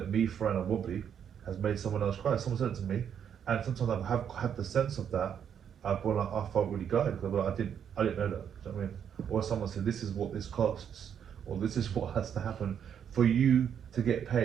me, Fran and Wobbly has made someone else cry. Someone said it to me, and sometimes I have had the sense of that. I felt really gutted because I didn't know that. Do you know what I mean? Or someone said, this is what this costs, or this is what has to happen for you to get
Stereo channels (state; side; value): quieter; left; 8.4 dB